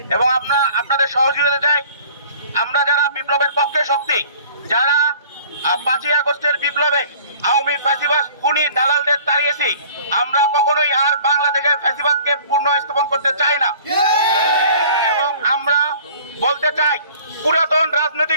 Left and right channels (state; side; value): inverted; both; correlation -0.50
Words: এবং আপনাদের সহযোগিতা চাই। আমরা যারা বিপ্লবের পক্ষে শক্তি, যারা 5ই আগস্টের বিপ্লবে আওয়ামী ফ্যাসিবাদ খুনি দালালদের তাড়িয়েছি, আমরা কখনোই আর বাংলাদেশের ফ্যাসিবাদকে পুনঃস্থাপন করতে চাই না। এবং আমরা বলতে চাই, পুরাতন